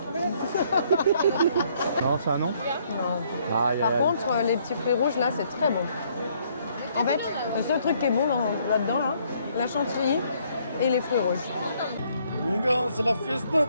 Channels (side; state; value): both; inverted; correlation -0.67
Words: Non, c'est un non? Non. Par contre, les petits fruits rouges, là, c'est très bon. En fait, le seul truc qui est bon là-dedans, là, la chantilly et les fruits rouges. Mon gars, c'est la fiesta,